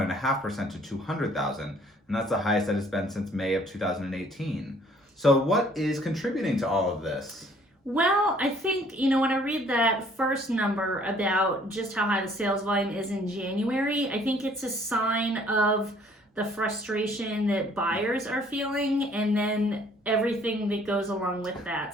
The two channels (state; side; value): normal; both; correlation 0.59